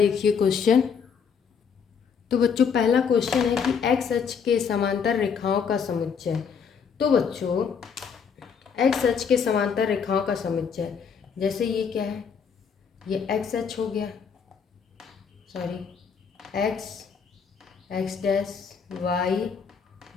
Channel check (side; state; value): right; quieter; 6.5 dB